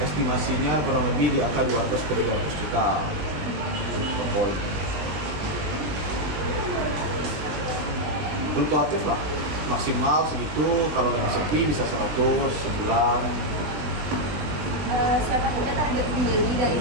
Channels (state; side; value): late; left; 20 ms